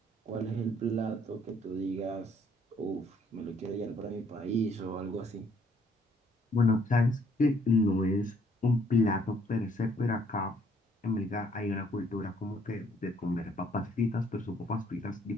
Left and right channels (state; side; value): normal; both; correlation 0.65